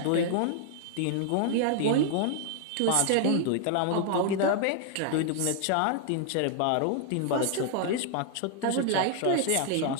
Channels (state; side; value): different; both; correlation 0.00